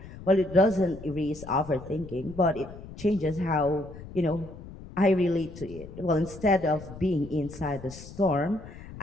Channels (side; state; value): left; noise; rumble, 15 dB below the sound